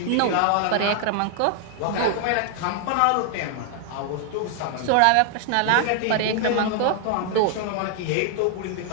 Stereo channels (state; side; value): different; both; correlation 0.00